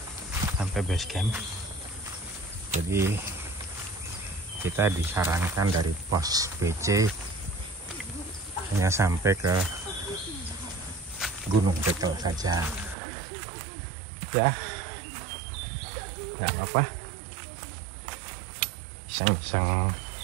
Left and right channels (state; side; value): drops out; left; at 13.0 s